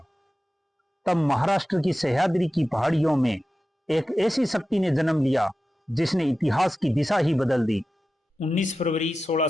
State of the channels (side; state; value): both; normal; correlation 0.93